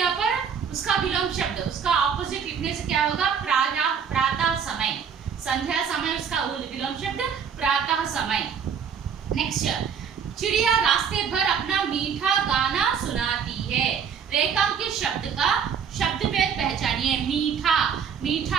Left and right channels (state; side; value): quieter; left; 7.1 dB